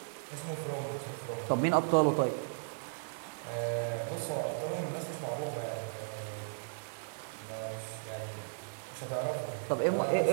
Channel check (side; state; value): left; silent; digital silence